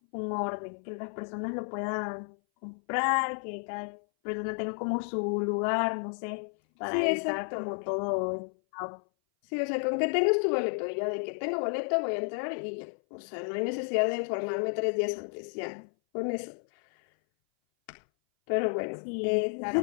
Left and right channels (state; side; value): silent; right; 57 dB below the other